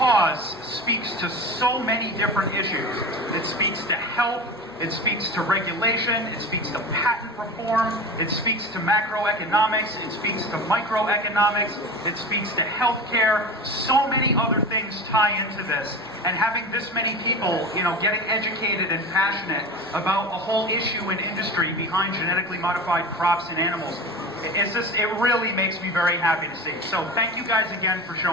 speaks to so many different issues. It speaks to health, it speaks to regulation, it speaks to patent reform, it speaks to macroeconomics, it speaks to microeconomics, it speaks to healthcare. So many other things tie into this. And having this many people, getting educated and passionate about a whole issue and industry behind genetically modified crops and animals, it really makes me very happy to see. So thank you guys again for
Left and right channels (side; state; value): left; noise; hum, 28 dB below the sound